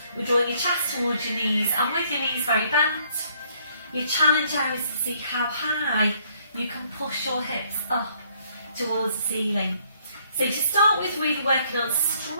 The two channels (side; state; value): both; inverted; correlation -0.65